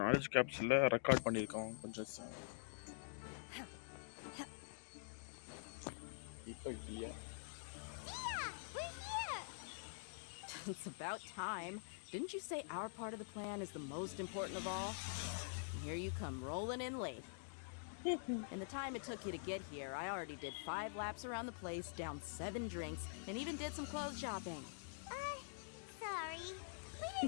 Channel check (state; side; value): silent; right; digital silence